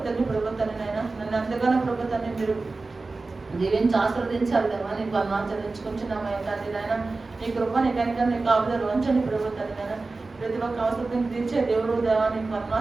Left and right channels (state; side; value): quieter; left; 3.6 dB